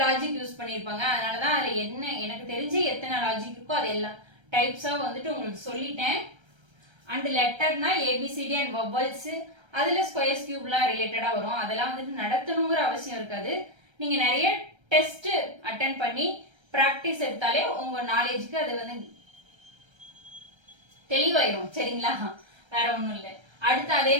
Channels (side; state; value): left; late; 1.3 ms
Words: லாஜிக் யூஸ் பண்ணியிருப்பாங்க. அதனாலதான் அதுல என்ன எனக்கு தெரிஞ்சு எத்தனை லாஜிக் இருக்கோ அது எல்லாம் டைப்ஸா வந்துட்டு உங்களுக்கு சொல்லிட்டேன். அண்ட் லெட்டர்னா ஏபிசிடி அண்ட் வவல்ஸ், அதுல ஸ்கொயர்ஸ் கியூப்லாம் ரிலேட்டடா வரும். அதெல்லாம் வந்துட்டு நடத்தணுங்கிற அவசியம் இருக்காது. நீங்க நிறைய டெஸ்ட் அட்டென்ட் பண்ணி பிராக்டிஸ் எடுத்தாலே உங்க நாலேஜுக்கு அது வந்து தெளிவாயிரும் சரிங்களா. வேற ஒண்ணும் இல்லை. அடுத்து அதே